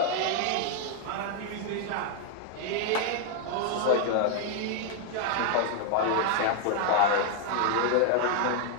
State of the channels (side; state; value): both; different; correlation 0.00